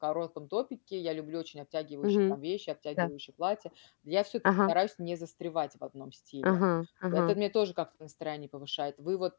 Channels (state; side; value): silent; right; digital silence